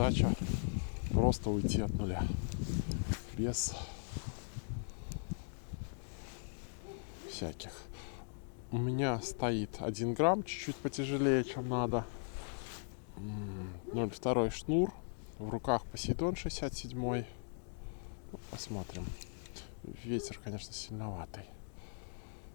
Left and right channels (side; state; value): right; silent; digital silence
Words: просто уйти от нуля. Без всяких. У меня стоит 1 грамм, чуть-чуть потяжелее, чем надо. 0,2 шнур. В руках Посейдон 67. Посмотрим. Ветер, конечно, сильноватый.